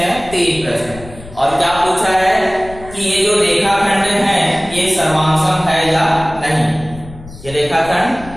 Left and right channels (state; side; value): noise; left; rumble, 17 dB below the sound